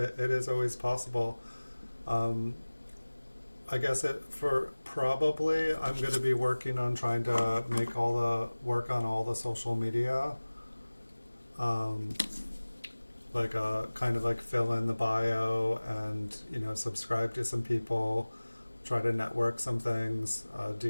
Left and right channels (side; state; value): both; inverted; correlation -1.00